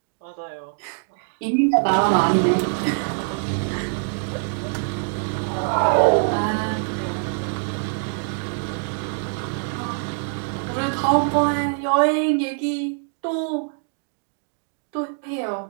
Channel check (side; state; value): left; silent; 63 dB below the other